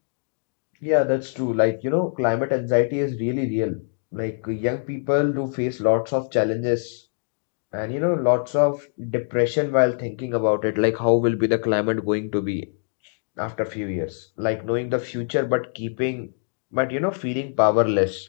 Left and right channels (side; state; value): right; silent; digital silence